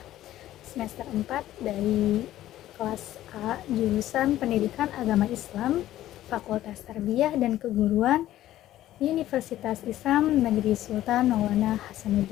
semester 4 dari kelas A, jurusan Pendidikan Agama Islam, Fakultas Tarbiyah dan Keguruan, Universitas Islam Negeri Sultan Maulana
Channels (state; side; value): quieter; right; 13.8 dB